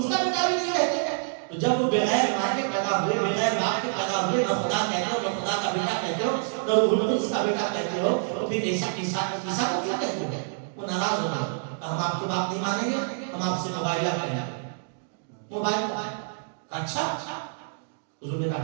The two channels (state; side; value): silent; left; digital silence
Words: کا بیٹا بھی نہیں کہتے. تو جب وہ بغیر ماں کے پیدا ہوئے بغیر باپ کے پیدا ہوئے نہ خدا کہتے ہو نہ خدا کا بیٹا کہتے ہو نہ روح القدس کا بیٹا کہتے ہو تو پھر عیسیٰ کو کیا کہتے ہو؟ وہ ناراض ہو گئے. ہم آپ کی بات نہیں مانیں گے, ہم آپ سے موبائلہ کریں گے. موبائل اچھا حضور نے کہا